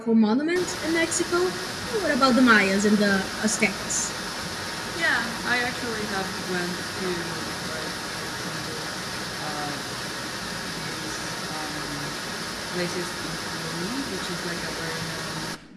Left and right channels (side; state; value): both; identical; correlation 1.00